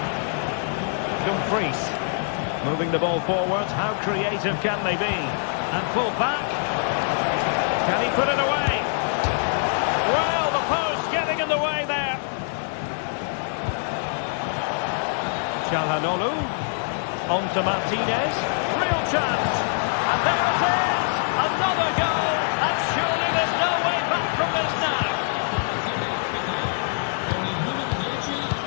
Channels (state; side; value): silent; right; 62 dB below the other